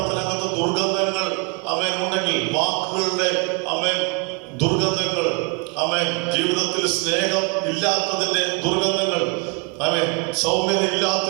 ദുർഗന്ധങ്ങൾ ഉണ്ടെങ്കിൽ, വാക്കുകളുടെ ദുർഗന്ധങ്ങൾ, ജീവിതത്തിൽ സ്നേഹം ഇല്ലാത്തതിന്റെ ദുർഗന്ധങ്ങൾ, സൗമ്യത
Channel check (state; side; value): quieter; left; 32.9 dB